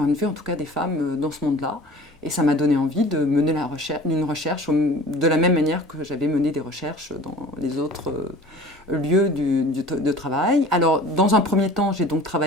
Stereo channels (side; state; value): both; normal; correlation 0.43